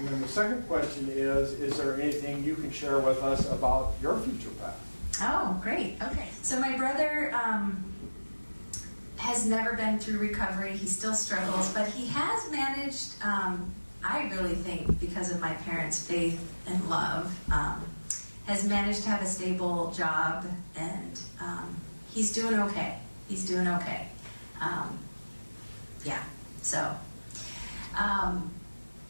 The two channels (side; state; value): both; inverted; correlation -1.00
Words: then the second question is there anything you can share with us about your future path? Oh, great. Okay. So my brother has never been through recovery. He still struggles, but he has managed, I really think because of my parents' faith and love, has managed to have a stable job, and he's doing okay. He's doing okay. So